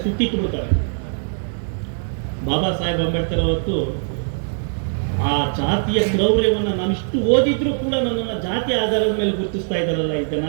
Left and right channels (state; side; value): silent; left; digital silence